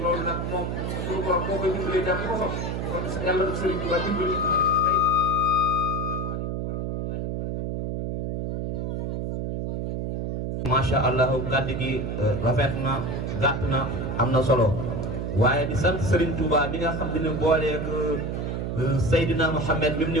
nag moom suñu borom moo koy dimbalee jàpp ko sopp kon sa yàlla du Sëriñ Tuubaa dimbali macha allah kàddu gi rafet na gàtt na am na solo waaye di sant Serigne Touba mi nga xam ne booleeg Seydina Muhammad mi mu ni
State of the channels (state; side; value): noise; right; hum, 2 dB below the sound